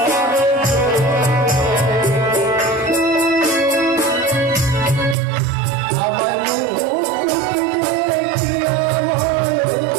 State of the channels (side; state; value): left; drops out; at 5.2 s